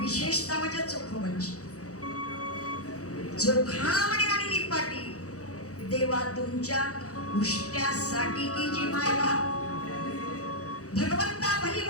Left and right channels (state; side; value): late; right; 0.66 ms